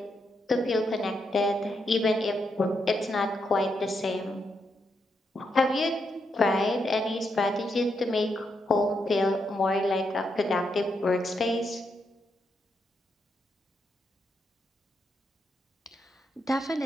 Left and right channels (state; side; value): normal; both; correlation 0.81